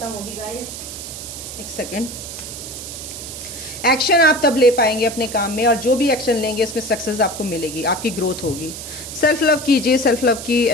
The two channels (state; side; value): noise; right; hiss, 10 dB below the sound